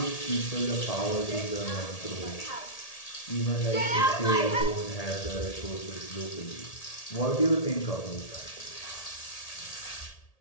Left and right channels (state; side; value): late; right; 1.8 ms